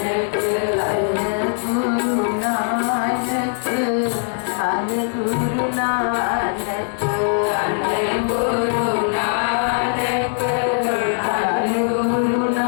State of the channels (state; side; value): silent; right; digital silence